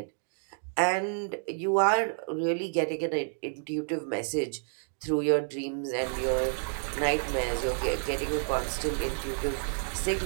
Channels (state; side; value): silent; left; 58 dB below the other